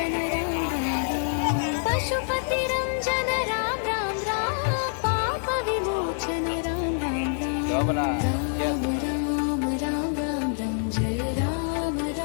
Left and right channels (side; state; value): right; silent; 61 dB below the other